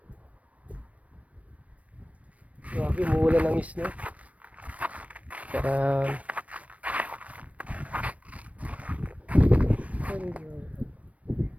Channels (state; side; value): late; left; 0.066 ms